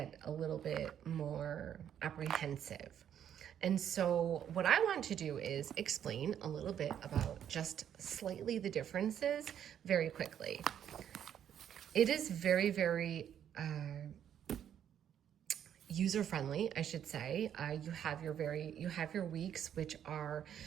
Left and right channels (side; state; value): left; quieter; 9.6 dB